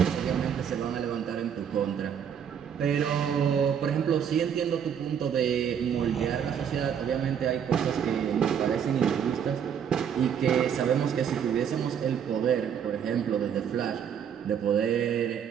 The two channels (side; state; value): left; quieter; 8.1 dB